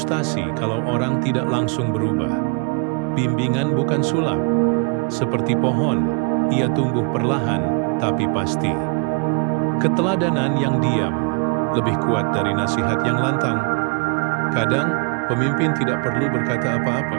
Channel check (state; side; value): quieter; left; 34.4 dB